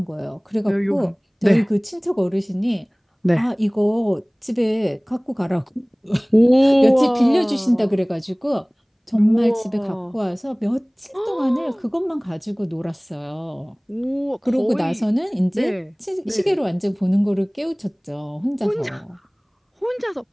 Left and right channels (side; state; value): both; identical; correlation 1.00